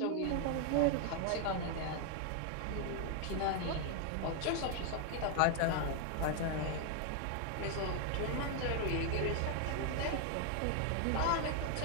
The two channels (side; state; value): both; different; correlation 0.00